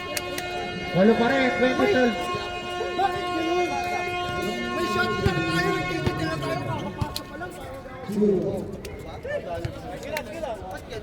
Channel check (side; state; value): both; identical; correlation 1.00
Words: Walo pa rin, 20-12. May shot lang tayo, nagtitigil na tayo, makakapasok pa lang.